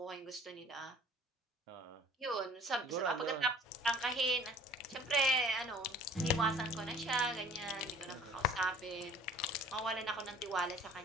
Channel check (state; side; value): normal; both; correlation 0.50